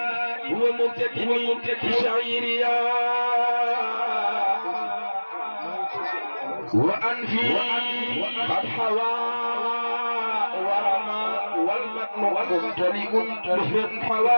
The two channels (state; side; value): inverted; both; correlation -1.00